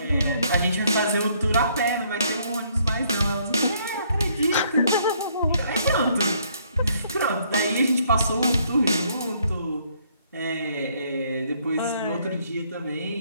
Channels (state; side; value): inverted; both; correlation -0.67